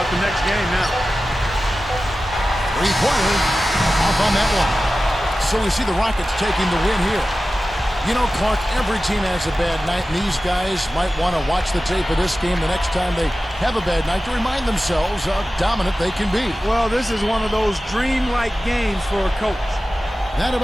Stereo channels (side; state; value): both; normal; correlation 0.95